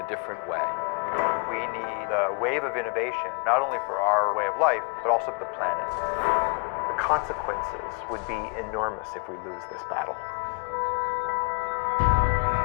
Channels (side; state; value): right; quieter; 34.1 dB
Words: different way. We need a wave of innovation, not only for our way of life, but also the planet. The consequences would be enormous if we lose this battle.